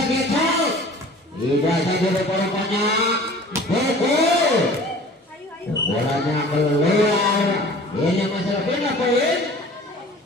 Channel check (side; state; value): both; normal; correlation 0.45